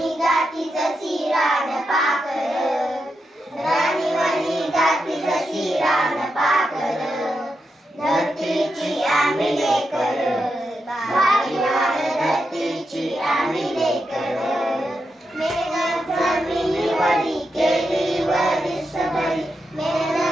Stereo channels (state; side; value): normal; both; correlation 0.86